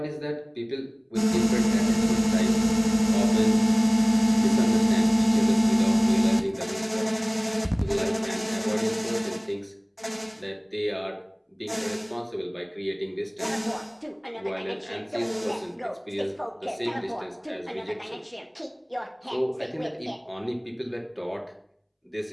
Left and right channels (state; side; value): identical; both; correlation 1.00